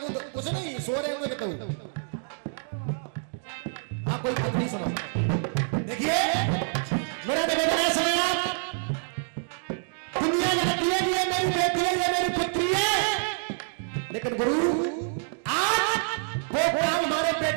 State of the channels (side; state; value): left; silent; digital silence